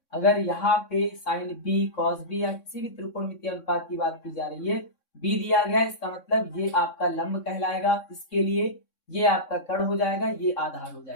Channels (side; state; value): right; late; 3.6 ms